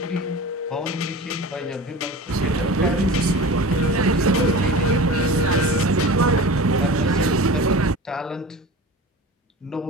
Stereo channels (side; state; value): both; normal; correlation 0.35